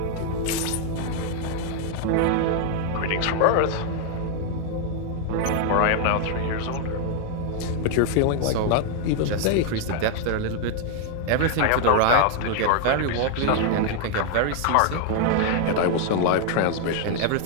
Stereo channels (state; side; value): different; both; correlation 0.00